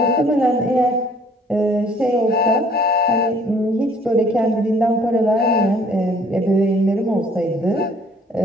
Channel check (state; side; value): normal; both; correlation 0.57